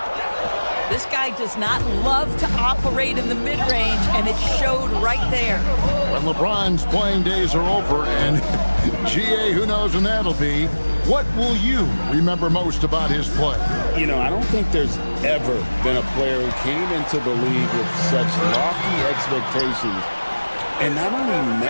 This guy does not love to operate in the mid-range, and it showed right there. When LeBron's playing days are over, and GA, who knows when that'll be, what will you remember most about his play? You know, I don't think there's ever been a player who came into the league with such lofty expectations and not only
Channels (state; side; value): inverted; both; correlation -1.00